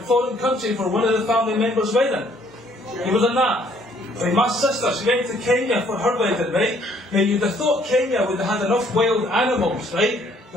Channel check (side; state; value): both; normal; correlation 0.63